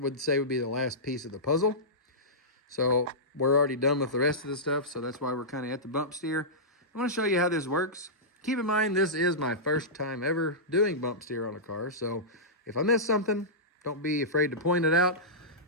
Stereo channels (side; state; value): both; normal; correlation -0.15